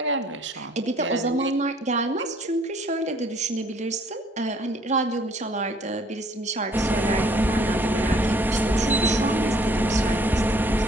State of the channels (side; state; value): both; normal; correlation 0.60